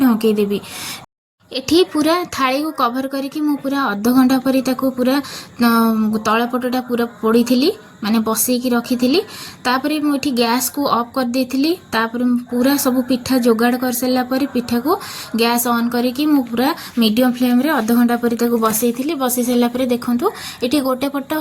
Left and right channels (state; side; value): identical; both; correlation 1.00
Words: देबी। एठी पूरा थाली को कवर करके मु पूरा अध घंटा पर पूरा तलपटटा पूरा पोड़ी थी माने बसईकी रखी थी। तापर मुझे गैस को ऑफ कर देती। तापर पूरा सब पिठा जोगाड़ कर सारा पर पिठा को गैस ऑन करके मु पूरा मीडियम फ्लेम रे अध घंटा पर बसई थी। बसई सारा पर देखंतु एठी गोटे पट